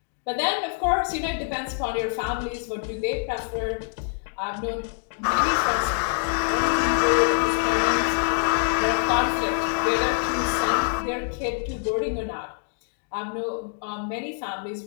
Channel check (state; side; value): silent; right; 62 dB below the other